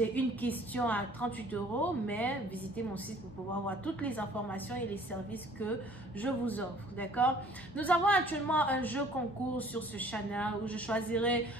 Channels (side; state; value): both; normal; correlation 0.54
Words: une question à 38 €, mais visitez mon site pour pouvoir voir toutes les informations et les services que je vous offre, d'accord? Nous avons actuellement un jeu concours sur ce channel où je choisirai